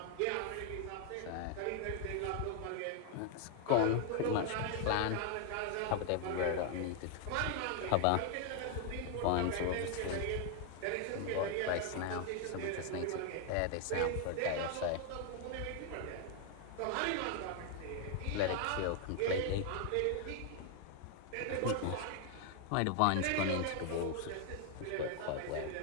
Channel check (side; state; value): both; different; correlation 0.00